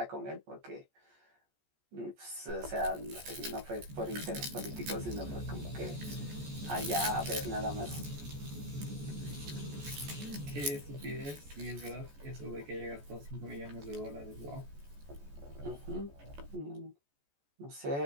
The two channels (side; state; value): left; late; 14 ms